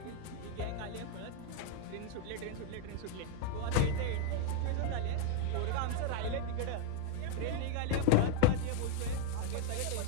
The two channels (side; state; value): both; different; correlation 0.01